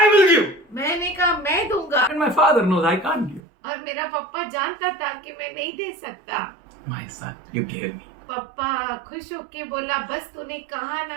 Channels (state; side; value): drops out; left; at 3.4 s